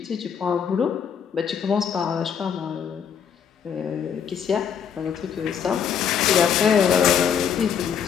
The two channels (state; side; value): quieter; right; 7.7 dB